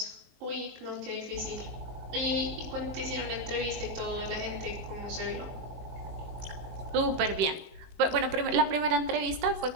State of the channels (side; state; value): left; late; 19 ms